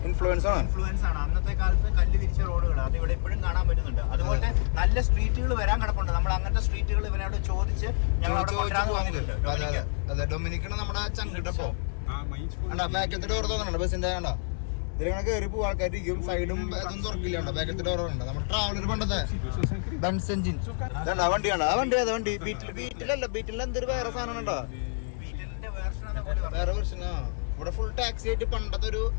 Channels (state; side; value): silent; right; 59 dB below the other